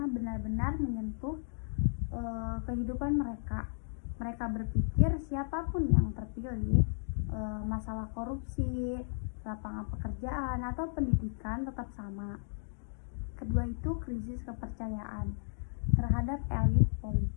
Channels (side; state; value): right; silent; digital silence